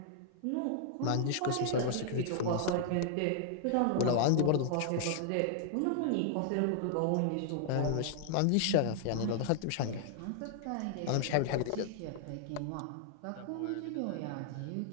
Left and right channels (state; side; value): different; both; correlation -0.01